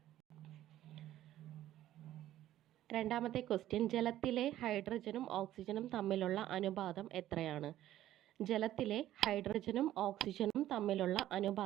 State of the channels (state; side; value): quieter; left; 13.3 dB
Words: രണ്ടാമത്തെ ക്വസ്റ്റ്യൻ, ജലത്തിലെ ഹൈഡ്രജനും ഓക്സിജനും തമ്മിലുള്ള അനുപാതം എത്രയാണ്? ജലത്തിലെ ഹൈഡ്രജനും ഓക്സിജനും തമ്മിലുള്ള